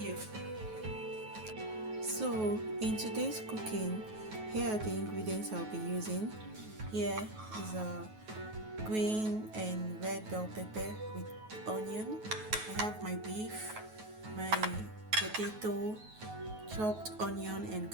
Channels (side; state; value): left; late; 9.3 ms